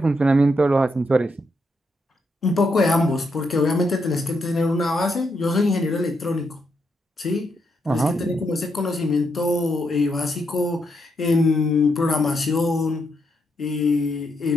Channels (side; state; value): both; normal; correlation 0.80